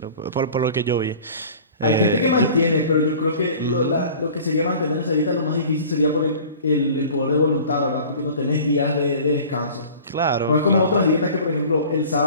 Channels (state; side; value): inverted; both; correlation -0.43